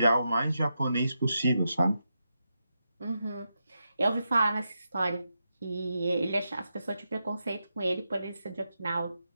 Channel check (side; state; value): both; inverted; correlation -0.86